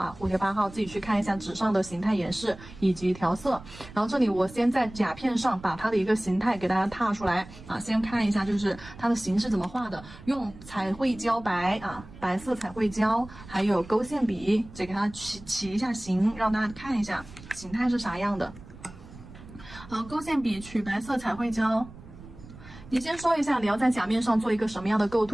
蝴蝶8号自己去看一下纸上的形态演示以及调色。然后这里我先在甲片上把它的一个形态给大家踏出来啊，先看一下就是它的形是怎么画的，用彩绘胶白啊，白色彩绘胶，还有勾线笔，这给它起一下形，让大家看一下形态是啥样的。好，勾线笔取白色彩绘胶。你先说一下你要在甲面上做一个什么样的构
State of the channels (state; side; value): noise; right; rumble, 18 dB below the sound